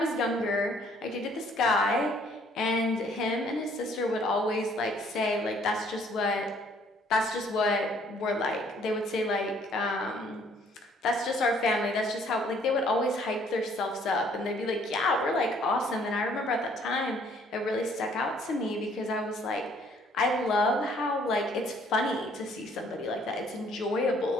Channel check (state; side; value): normal; both; correlation 0.61